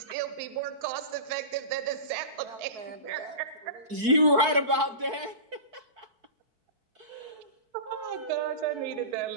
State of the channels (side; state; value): left; late; 4.6 ms